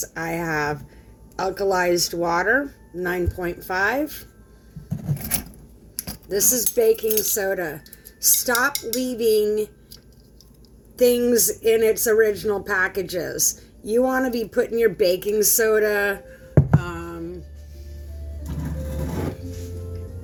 I have alkalized water, 9.5. This is baking soda. Stop leaving things in its original packages. You want to be putting your baking soda,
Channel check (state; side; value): identical; both; correlation 1.00